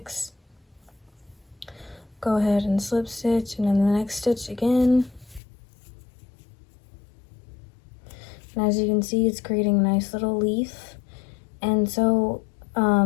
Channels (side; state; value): right; drops out; at 5.4 s